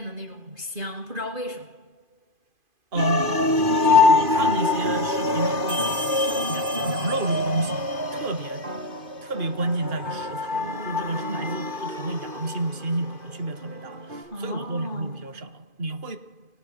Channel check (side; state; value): left; late; 2.5 ms